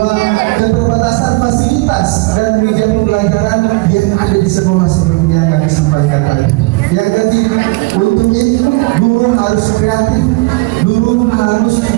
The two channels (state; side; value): quieter; left; 24.0 dB